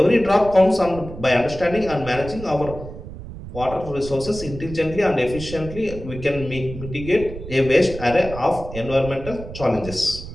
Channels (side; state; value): right; noise; rumble, 12 dB below the sound